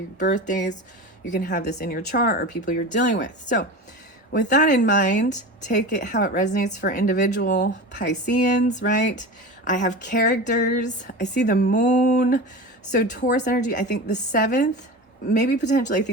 birthdays. You can have this in your chart or people you're dealing with. So with that in mind, take it how it resonates for individual Pisceans, right? I have characters. I see the moon. So Taurus energy, I think the 7th, maybe potentially, I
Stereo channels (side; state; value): both; normal; correlation 0.29